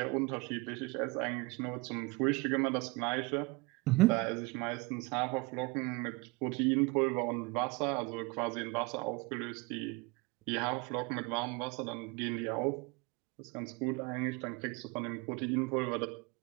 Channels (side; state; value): left; quieter; 25.7 dB